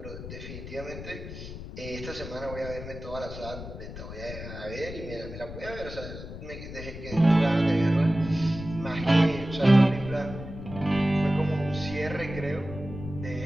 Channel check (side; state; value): left; noise; rumble, 10 dB below the sound